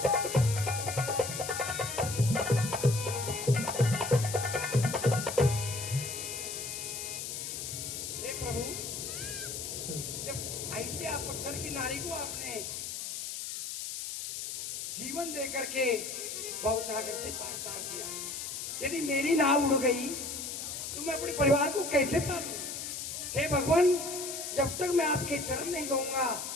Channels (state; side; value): noise; left; hiss, 5 dB below the sound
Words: जीवन दे करके भवसागर से पार कर दिया। यदि मेरी नाव उड़ गई तो मैं अपने परिवार को कैसे पालूं? हे भगवान, जब तक मैं आपके चरण नहीं दूंगा